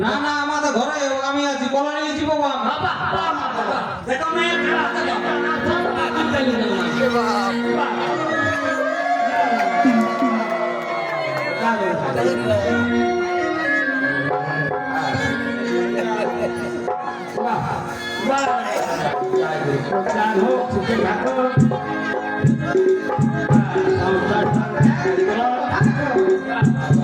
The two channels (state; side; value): identical; both; correlation 1.00